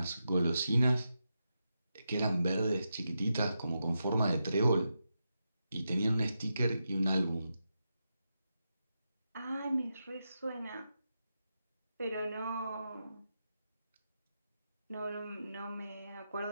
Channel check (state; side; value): inverted; both; correlation -0.87